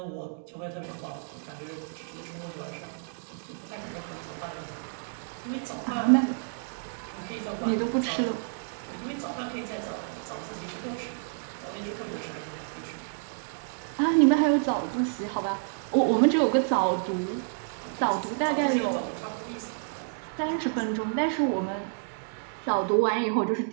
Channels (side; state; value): left; silent; digital silence